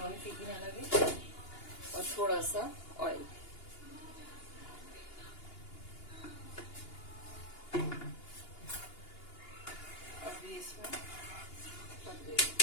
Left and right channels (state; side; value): late; right; 2.8 ms